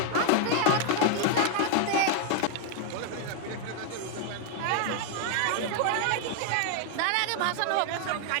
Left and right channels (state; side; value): different; both; correlation 0.00